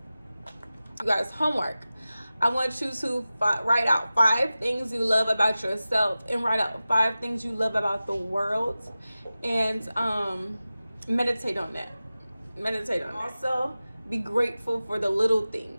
You guys, homework. I want you to write out 5 things you love about yourself and write out 5 things you love about the world, and meditate on that. Also, be grateful for the little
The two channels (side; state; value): both; inverted; correlation -0.95